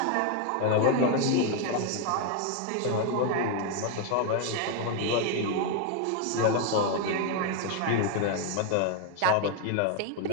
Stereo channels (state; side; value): different; both; correlation 0.01